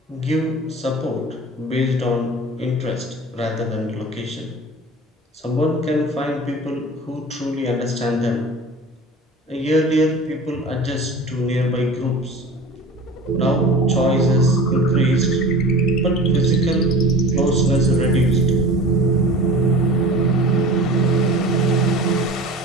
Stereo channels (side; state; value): both; normal; correlation 0.38